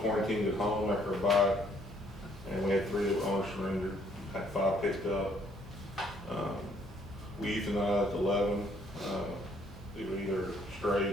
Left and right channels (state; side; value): normal; both; correlation 0.65